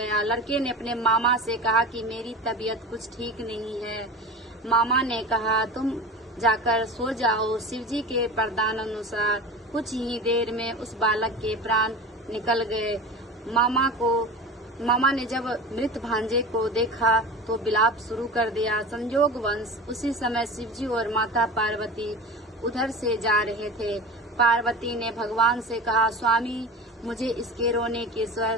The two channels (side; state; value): both; normal; correlation 0.33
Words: लड़के ने अपने मामा से कहा कि मेरी तबीयत कुछ ठीक नहीं है। मामा ने कहा, तुम जाकर सो जाओ। शिवजी के वरदान अनुसार कुछ ही देर में उस बालक के प्राण निकल गए। मामा ने जब मृत भांजे को देखा तो विलाप शुरू कर दिया। संयोगवश उसी समय शिवजी और माता पार्वती उधर से जा रहे थे। पार्वती ने भगवान से कहा, स्वामी, मुझे इसके रोने के स्वर